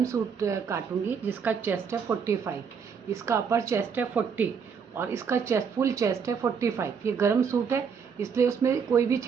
सूट काटूंगी जिसका चेस्ट है 45, इसका अपर चेस्ट है 40 और इसका चेस्ट फुल चेस्ट है 45। ये गरम सूट है इसलिए उसमें कोई भी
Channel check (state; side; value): quieter; left; 6.4 dB